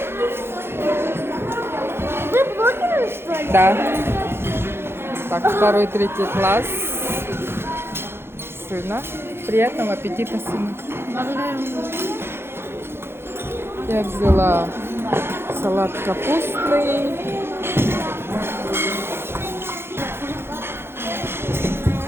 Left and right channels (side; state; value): left; late; 0.11 ms